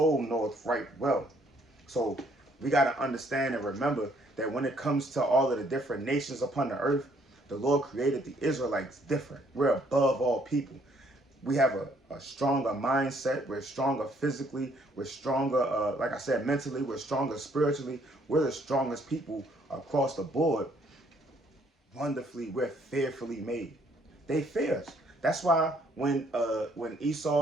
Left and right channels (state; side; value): normal; both; correlation 0.66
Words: knoweth right well. So we got to understand and remember that when it comes to all of the different nations upon the earth, the Lord created the Israelites different. We're above all people. We have a stronger mindset. We're stronger physically. We're stronger, like I said, mentally. We're stronger spiritually. We're the strongest people across the board. Wonderfully, we're fearfully made. They fear us. That's why when